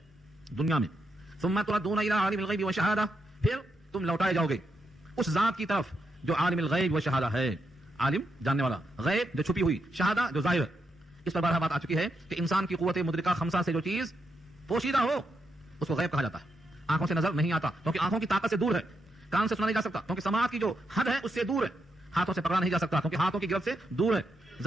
دنیا میں. ثم تردون الى عالم الغیب والشہادہ، پھر تم لوٹائے جاؤ گے اس ذات کی طرف جو عالم الغیب والشہادہ ہے. عالم جاننے والا، غیب جو چھپی ہوئی، شہادہ جو ظاہر ہے. اس پر بارہ بات آ چکی ہے کہ انسان کی قوت مدرکہ خمسہ سے جو چیز پوشیدہ ہو اس کو غیب کہا جاتا ہے. آنکھوں سے نظر نہیں آتا کیونکہ آنکھوں کی طاقت سے دور ہے. کان سے سنا نہیں جا سکتا کیونکہ سماعت کی جو حد ہے اس سے دور ہے. ہاتھوں سے پکڑا نہیں جا سکتا کیونکہ ہاتھوں کی گرفت سے دور ہے.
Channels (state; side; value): normal; both; correlation 0.82